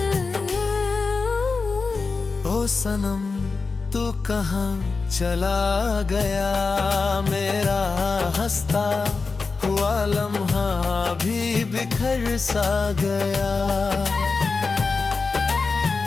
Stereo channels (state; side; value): quieter; right; 4.3 dB